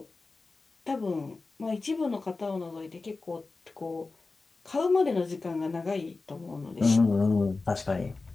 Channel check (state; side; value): quieter; right; 3.7 dB